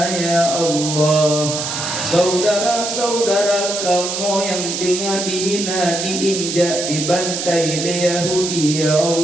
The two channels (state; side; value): noise; right; hiss, 4 dB below the sound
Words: ya Allah. Saudara-saudara kamu yang tinggal dihina, diinjak, dibantai oleh Yahudi ya